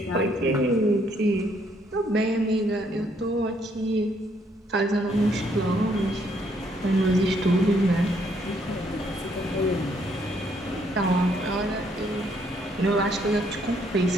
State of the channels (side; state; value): both; normal; correlation 0.70